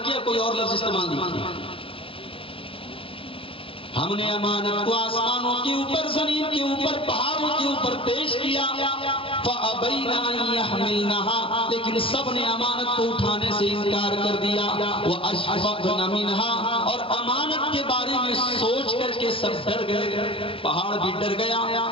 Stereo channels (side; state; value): right; late; 0.26 ms